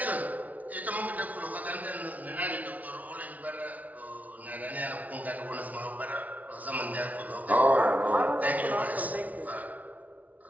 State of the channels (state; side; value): late; left; 0.072 ms